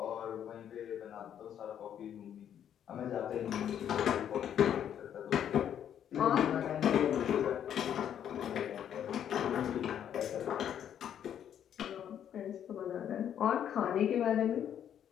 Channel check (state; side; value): quieter; right; 9.6 dB